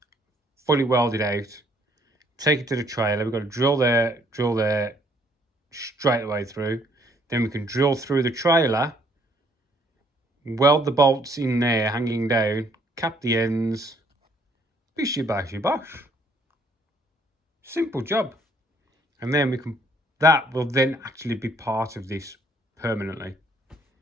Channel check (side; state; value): both; normal; correlation 0.65